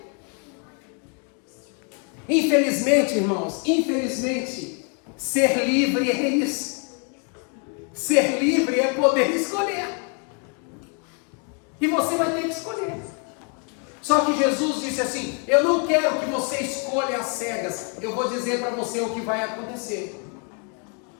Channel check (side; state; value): right; quieter; 39.4 dB